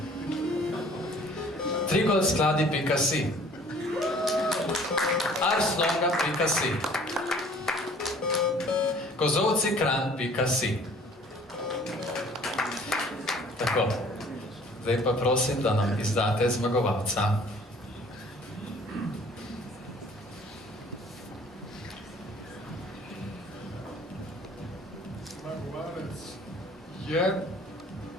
Trigolskladi.si, arslonga.si, kozovcikran.si. Tako, zdaj pa prosim, da nam izdate zmagovalca. Zmagovalec je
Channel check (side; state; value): both; normal; correlation 0.53